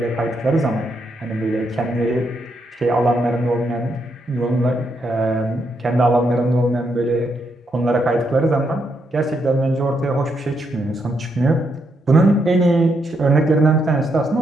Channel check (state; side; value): normal; both; correlation 0.79